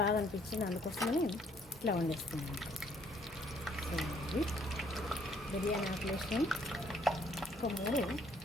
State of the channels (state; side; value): normal; both; correlation 0.64